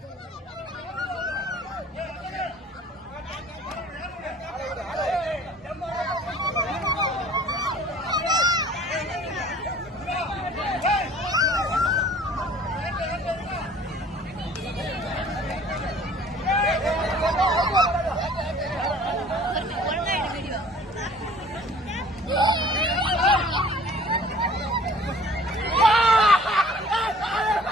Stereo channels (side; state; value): both; normal; correlation 0.50